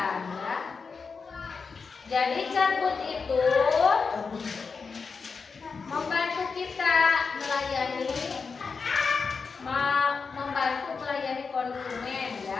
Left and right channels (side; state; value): right; quieter; 5.1 dB